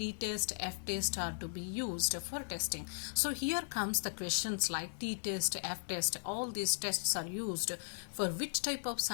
f-test are to be used for testing. So here comes the questions like t-test, f-test, all these tests are used for which type of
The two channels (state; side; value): silent; right; digital silence